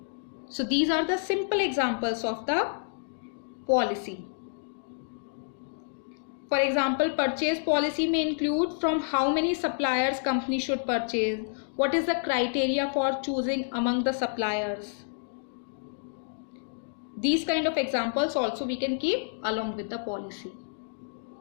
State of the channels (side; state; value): right; silent; digital silence